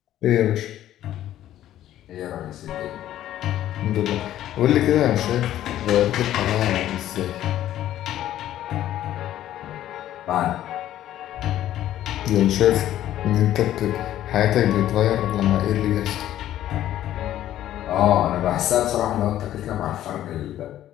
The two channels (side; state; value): right; quieter; 12.6 dB